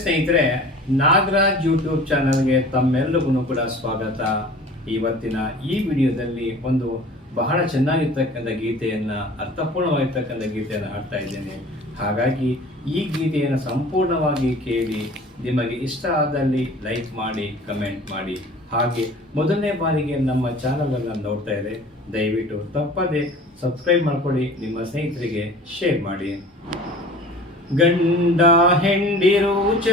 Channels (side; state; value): both; normal; correlation 0.44